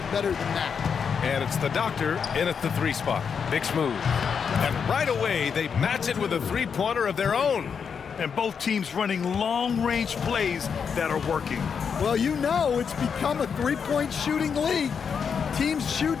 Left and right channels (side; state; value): right; quieter; 6.6 dB